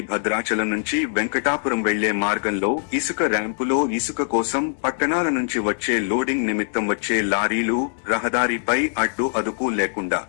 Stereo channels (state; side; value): silent; right; digital silence